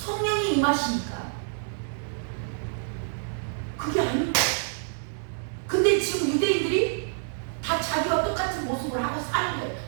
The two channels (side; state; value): left; silent; digital silence